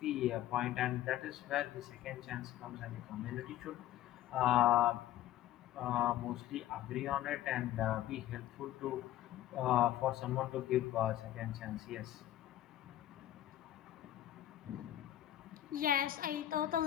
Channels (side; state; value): right; quieter; 13.3 dB